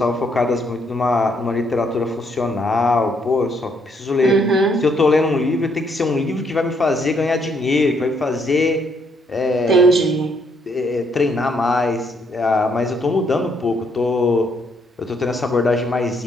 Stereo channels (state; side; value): normal; both; correlation 0.71